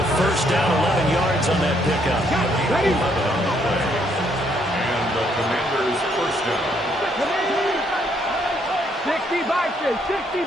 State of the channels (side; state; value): both; normal; correlation 0.70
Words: first down, 11 yards on that pickup. 11 on the play. And the Commanders first down. 60 Bison.